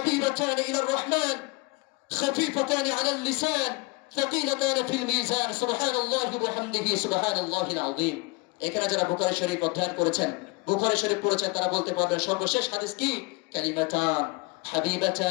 ইলার রহমান خفيفتان على اللسان ثقيلتان في الميزان سبحان الله وبحمده سبحان الله العظيم। এখানে যারা বুখারী শরীফ অধ্যয়ন করেছেন, বুখারী শরীফ পড়েছেন, তারা বলতে পারবেন সর্বশেষ হাদিস কি? কালিমাতান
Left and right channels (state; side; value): quieter; right; 27.1 dB